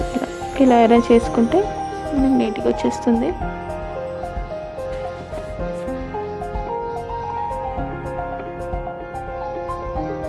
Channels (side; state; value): both; identical; correlation 1.00